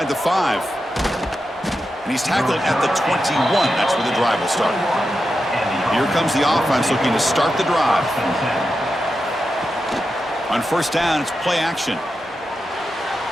the 5. And he's tackled at the 21. That's where the drive will start. Here comes the offense looking to start the drive. On 1st down, it's play action.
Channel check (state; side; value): normal; both; correlation 0.89